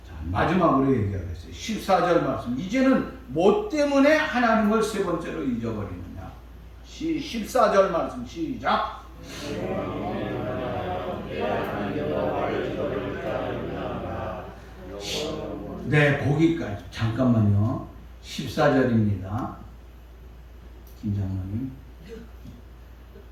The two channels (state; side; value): identical; both; correlation 1.00